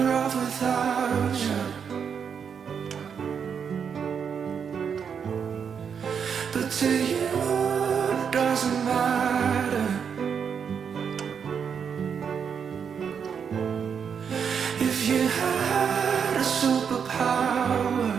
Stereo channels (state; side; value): quieter; left; 7.0 dB